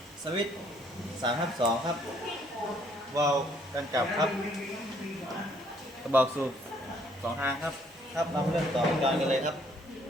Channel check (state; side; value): normal; both; correlation 0.65